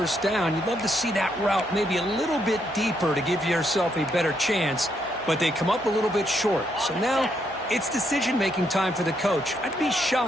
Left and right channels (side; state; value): both; normal; correlation 0.76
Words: down. You'd love to see that route maybe a little bit deeper to give yourself a better chance, but they come up a little bit short. So now it's decision-making time for the coach. I'd be